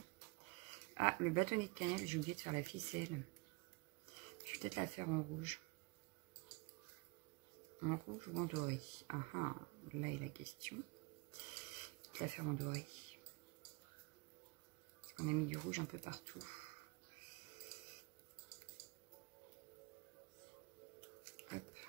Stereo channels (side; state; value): left; quieter; 28.7 dB